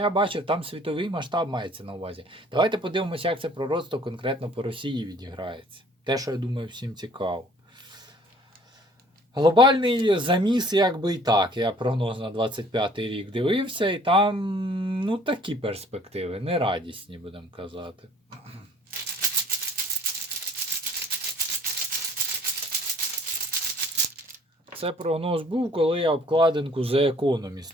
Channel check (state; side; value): normal; both; correlation 0.55